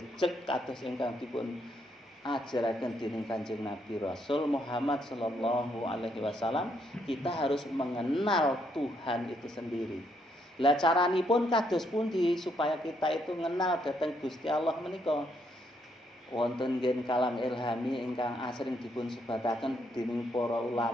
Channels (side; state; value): both; normal; correlation 0.74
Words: kados ingkang dipun ajaraken dening Kanjeng Nabi Rasul Muhammad sallallahu alaihi wasallam, kita harus mengenal Tuhan itu sendiri. Lah caranipun kados pundi supaya kita itu mengenal dhateng Gusti Allah menika? Wonten nggih kalam ilhami ingkang asring dipun sebataken dening para